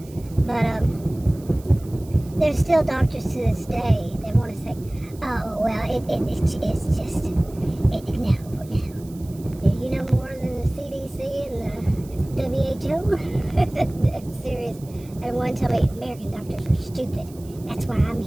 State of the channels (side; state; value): right; noise; hiss, 23 dB below the sound